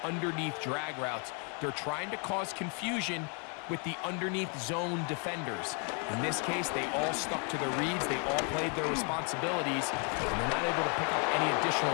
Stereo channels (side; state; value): right; quieter; 38.2 dB